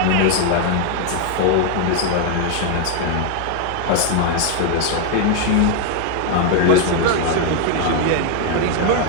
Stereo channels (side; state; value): both; different; correlation 0.01